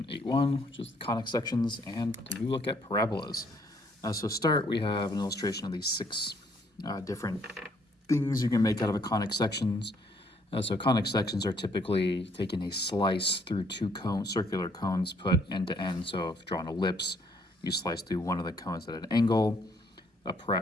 8.1, which is the conic sections, and a new look at parabolas. So start, we have an illustration of these six different things you can make out of a conic sections. So conic sections are typically taking a slice through two circular cones put end to end. So if you draw an ellipse, you slice through one of the cones at an angle. A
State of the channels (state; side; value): normal; both; correlation 0.66